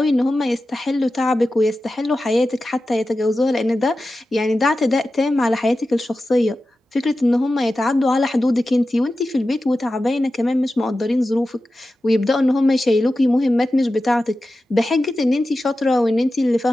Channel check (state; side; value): normal; both; correlation 0.93